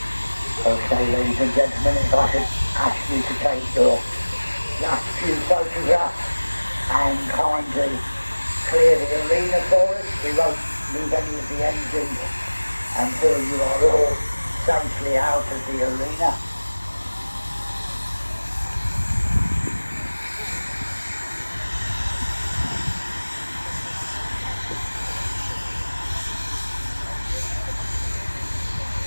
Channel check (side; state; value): both; inverted; correlation -1.00